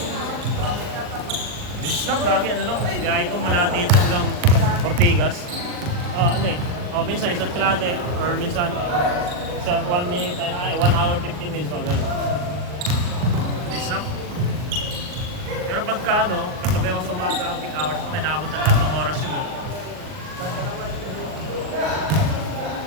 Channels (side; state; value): left; late; 39 ms